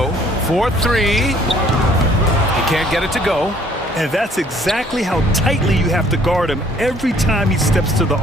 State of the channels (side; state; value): both; normal; correlation 0.59